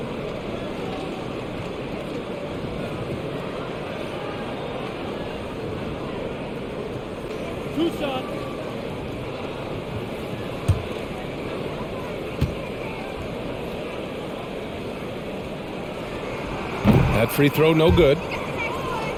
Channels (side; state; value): both; identical; correlation 1.00